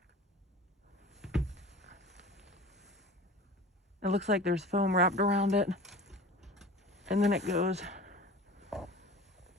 It looks like there's foam wrapped around it. And then it goes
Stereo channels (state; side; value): normal; both; correlation 0.38